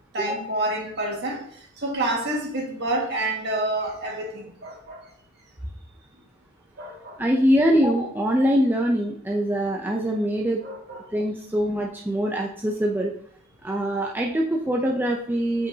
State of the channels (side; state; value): both; normal; correlation 0.65